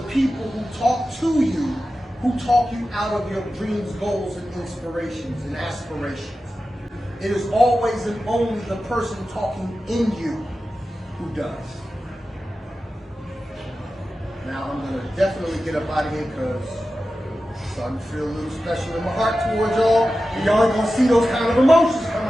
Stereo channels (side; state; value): both; normal; correlation 0.93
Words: people who talk to you who talk you out of your dreams, goals, and inspirations and aspirations. It is always and only the person talking in you who does. Now I'm going to definitely get up out of here because I'm starting to feel a little special in my heart towards y'all. And y'all ain't going to see those kind of emotions come